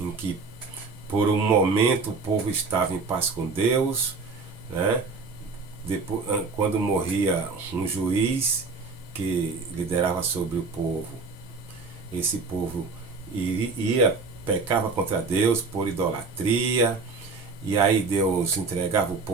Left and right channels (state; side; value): quieter; left; 4.2 dB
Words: que por um momento o povo estava em paz com Deus, né? Depois, quando morria um juiz que liderava sobre o povo, esse povo pecava contra Deus por idolatria, e aí Deus entregava o